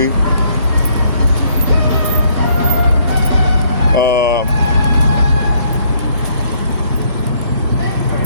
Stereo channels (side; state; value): both; inverted; correlation -0.67